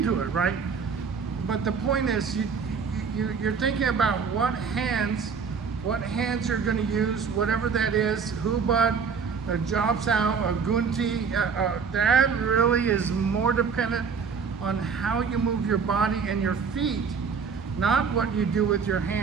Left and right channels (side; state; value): left; quieter; 5.8 dB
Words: it, right? But the point is, you're thinking about what hands you're going to use, whatever that is, hubad, a job sao, a gunti. That really is more dependent on how you move your body and your feet, not what you do with your